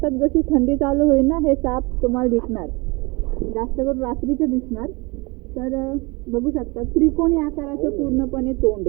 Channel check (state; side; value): quieter; left; 26.4 dB